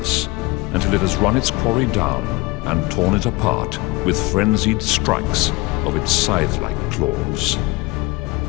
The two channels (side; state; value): right; quieter; 23.2 dB